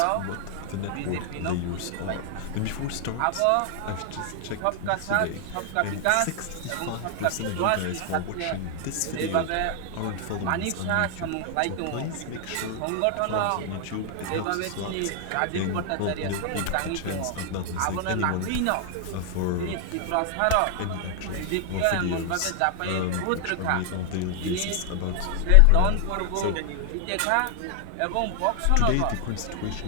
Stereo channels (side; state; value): both; different; correlation 0.00